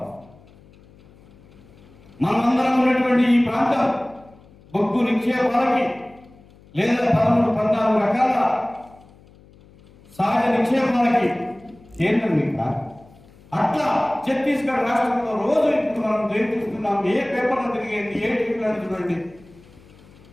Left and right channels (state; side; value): noise; left; hum, 26 dB below the sound